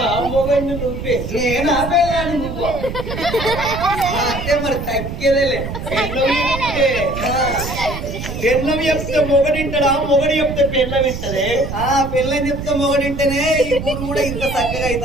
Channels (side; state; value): right; noise; rumble, 7 dB below the sound